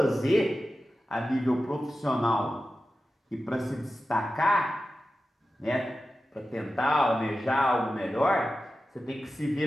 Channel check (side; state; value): both; normal; correlation 0.93